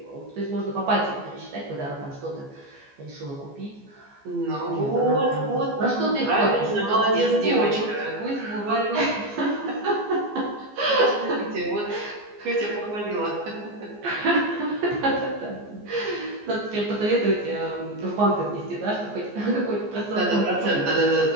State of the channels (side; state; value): left; late; 14 ms